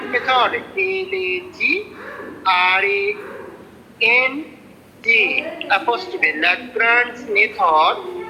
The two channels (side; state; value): both; identical; correlation 1.00